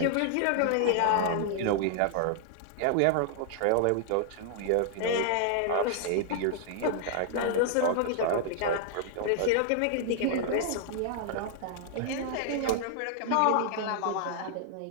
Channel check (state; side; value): different; both; correlation -0.01